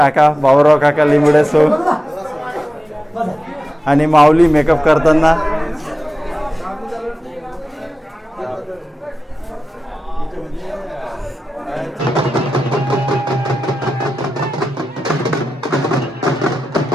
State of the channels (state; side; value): normal; both; correlation 0.93